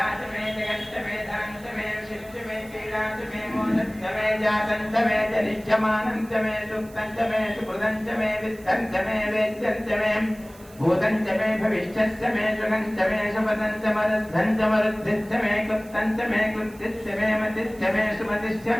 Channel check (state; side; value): noise; right; hiss, 24 dB below the sound